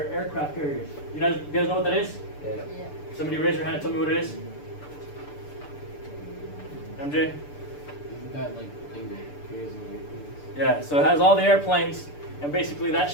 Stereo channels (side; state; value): right; late; 6.8 ms